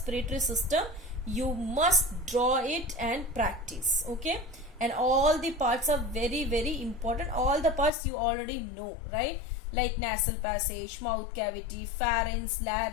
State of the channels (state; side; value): drops out; right; at 7.9 s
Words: system. You must draw it and practice. Okay, and all the parts are very important. All the parts you already know, right? Like nasal passage, mouth cavity, pharynx,